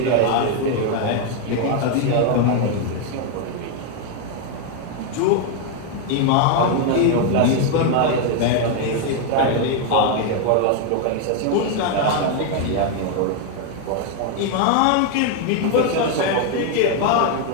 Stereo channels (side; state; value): both; different; correlation 0.01